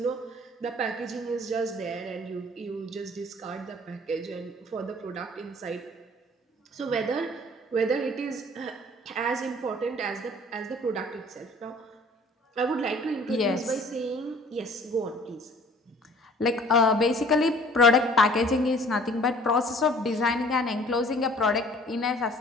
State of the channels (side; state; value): both; normal; correlation 0.52